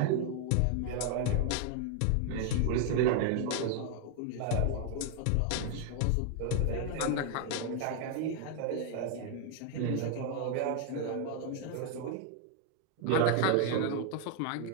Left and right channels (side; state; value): both; different; correlation 0.00